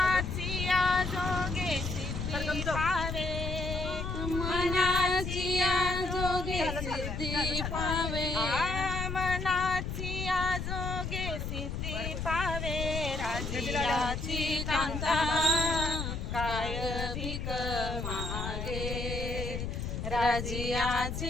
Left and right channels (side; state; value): left; noise; rumble, 4 dB below the sound